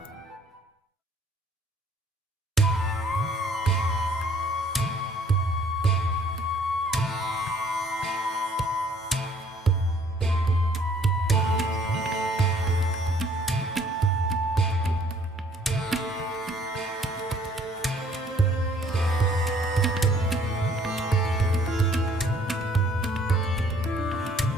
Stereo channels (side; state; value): both; normal; correlation 0.60